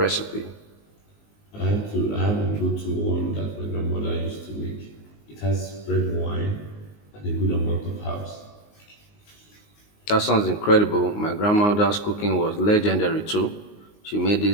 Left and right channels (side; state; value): right; late; 19 ms